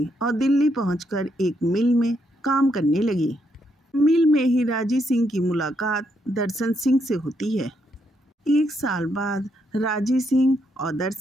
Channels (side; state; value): both; normal; correlation 0.77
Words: और दिल्ली पहुंचकर एक मिल में काम करने लगी। मिल में ही राजी सिंह की मुलाकात दर्शन सिंह से होती है। 1 साल बाद राजी सिंह और